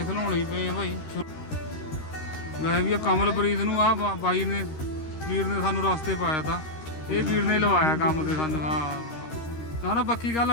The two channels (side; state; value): right; late; 13 ms